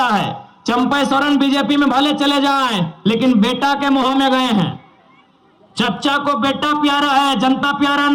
है। चंपई सोरेन बीजेपी में भले चले जाएं, लेकिन बेटा के मोह में गए हैं। चच्चा को बेटा प्यारा है, जनता प्यारा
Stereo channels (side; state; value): both; identical; correlation 1.00